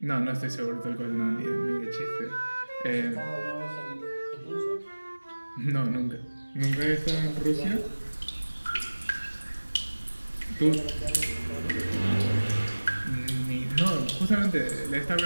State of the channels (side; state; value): both; inverted; correlation -1.00